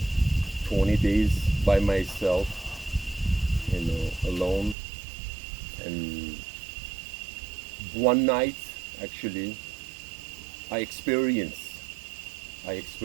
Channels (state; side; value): drops out; left; at 4.8 s